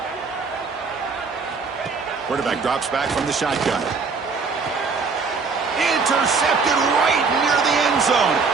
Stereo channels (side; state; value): left; quieter; 4.8 dB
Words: Quarterback drops back from the shotgun. Intercepted right near the end zone.